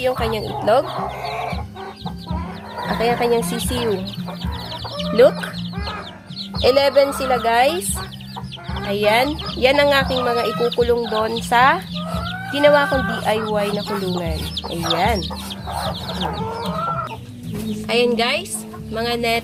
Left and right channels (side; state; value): both; identical; correlation 1.00